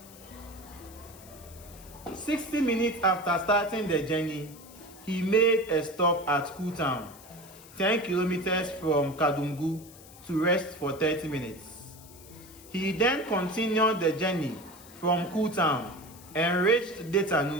60 minutes after starting the journey, he made a stop at Kutown, 10 kilometers from Kadungu, to rest for 30 minutes. He then continued the journey from Kutown and reached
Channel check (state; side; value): noise; left; hiss, 20 dB below the sound